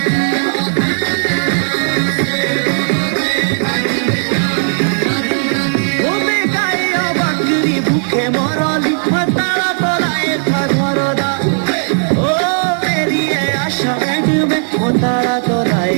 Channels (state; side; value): silent; left; 56 dB below the other